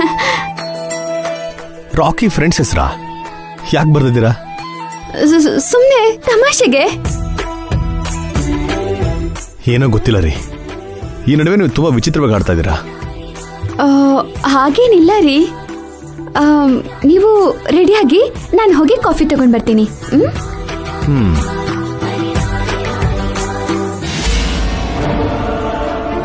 ರಾಕಿ ಫ್ರೆಂಡ್ಸ್ ಹೆಸರಾ? ಯಾಕೆ ಬರ್ದಿದ್ದೀರಾ? ಸುಮ್ಮನೆ ತಮಾಷೆಗೆ. ಏನೋ ಗೊತ್ತಿಲ್ಲ ರೀ, ಈ ನಡುವೆ ನೀವು ತುಂಬಾ ವಿಚಿತ್ರವಾಗಿ ಆಡ್ತಾ ಇದ್ದೀರಾ. ಹಾಗೇನಿಲ್ಲ ರೀ. ನೀವು ರೆಡಿಯಾಗಿ ನಾನು ಹೋಗಿ ಕಾಫಿ ತಗೊಂಡ್ ಬರ್ತೀನಿ.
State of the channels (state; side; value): identical; both; correlation 1.00